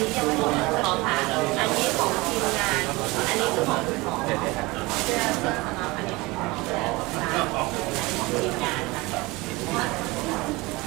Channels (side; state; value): left; quieter; 22.8 dB